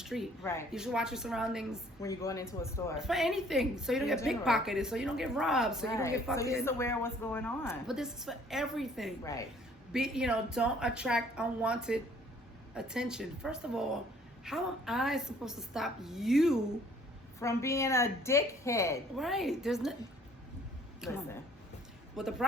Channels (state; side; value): normal; both; correlation 0.58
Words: Right. You should watch your surroundings When you're going into a store. for anything. So you don't In get general. pickpocketed. So you don't get robbed. So you don't get So fucking. you're just aware of what's going on. But this is for everything. Right. Don't attract unwanted attention. First of all, how am I supposed to stop you? From being a dickhead. Right. There's no. Come on. Listen. What the